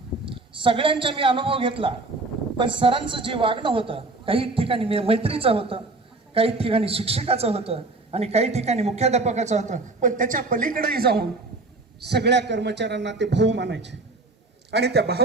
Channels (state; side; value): quieter; left; 3.3 dB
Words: सगळ्यांचा मी अनुभव घेतला. पण सरांचं जे वागणं होतं, काही ठिकाणी मैत्रीचं होतं, काही ठिकाणी शिक्षकाचं होतं आणि काही ठिकाणी मुख्याध्यापकाचं होतं. पण त्याच्या पलीकडेही जाऊन सगळ्या कर्मचाऱ्यांना ते भाऊ मानायचे आणि त्या